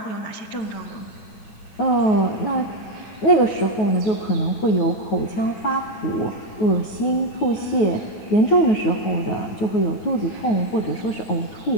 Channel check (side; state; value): right; late; 9.4 ms